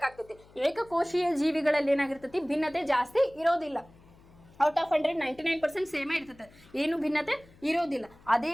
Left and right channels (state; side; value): noise; left; hum, 26 dB below the sound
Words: ಏಕಕೋಶೀಯ ಜೀವಿಗಳಲ್ಲಿ ಏನಾಗಿರ್ತೈತಿ, ಭಿನ್ನತೆ ಜಾಸ್ತಿ ಇರೋದಿಲ್ಲ. ಔಟ್ ಆಫ್ 100 99% ಸೇಮೇ ಇರ್ತದೆ, ಏನು ಭಿನ್ನತೆ ಇರೋದಿಲ್ಲ. ಅದೇ